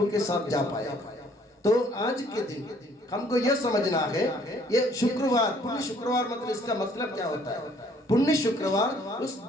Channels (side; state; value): both; normal; correlation 0.61